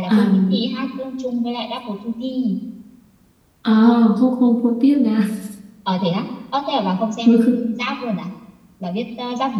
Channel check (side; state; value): both; identical; correlation 1.00